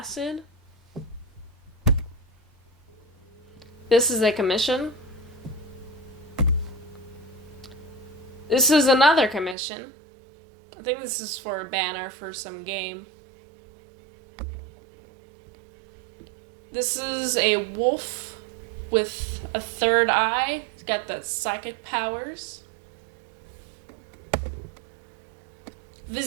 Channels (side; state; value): left; drops out; at 9.6 s